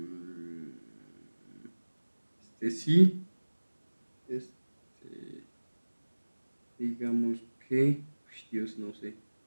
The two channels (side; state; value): both; inverted; correlation -1.00